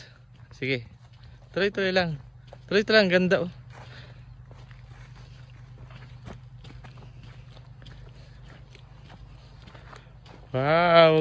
Sige. Tuloy-tuloy lang. Tuloy-tuloy lang, ganda oh.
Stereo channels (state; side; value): identical; both; correlation 1.00